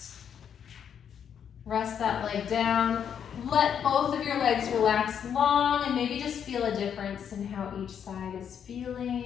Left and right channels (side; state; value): right; quieter; 8.2 dB